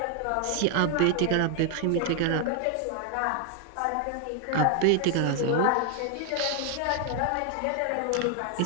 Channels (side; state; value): both; different; correlation 0.01